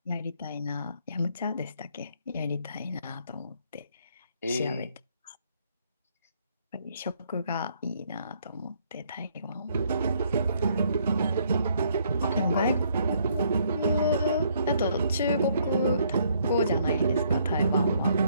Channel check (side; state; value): both; inverted; correlation -0.68